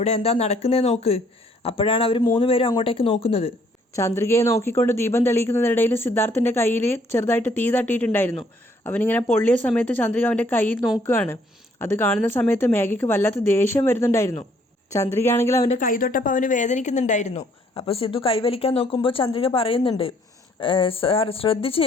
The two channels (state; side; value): normal; both; correlation 0.64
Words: എന്താ നടക്കുന്നതെന്ന് നോക്ക്. അപ്പോഴാണ് അവർ 3 പേരും അങ്ങോട്ടേക്ക് നോക്കുന്നത്. ചന്ദ്രികയെ നോക്കിക്കൊണ്ട് ദീപം തെളിയിക്കുന്നതിനിടയിൽ സിദ്ധാർത്ഥിൻ്റെ കയ്യിൽ ചെറുതായിട്ട് തീ തട്ടിയിട്ടുണ്ടായിരുന്നു. അവനിങ്ങനെ പൊള്ളിയ സമയത്ത് ചന്ദ്രിക അവൻ്റെ കയ്യിൽ നോക്കുകയാണ്. അത് കാണുന്ന സമയത്ത് മേഘയ്ക്ക് വല്ലാത്ത ദേഷ്യം വരുന്നുണ്ടായിരുന്നു. ചന്ദ്രിക ആണെങ്കിൽ അവൻ്റെ കൈ തൊട്ടപ്പോൾ അവന് വേദനിക്കുന്നുണ്ടായിരുന്നു. അപ്പോൾ സിദ്ധു കൈവലിക്കാൻ നോക്കുമ്പോൾ ചന്ദ്രിക പറയുന്നുണ്ട്, സാർ ശ്രദ്ധിച്ച്